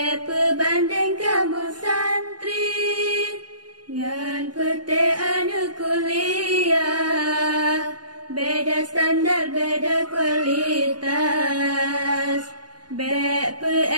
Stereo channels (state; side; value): late; left; 0.70 ms